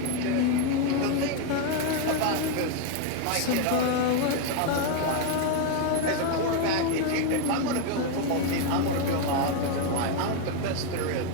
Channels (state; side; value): different; both; correlation 0.01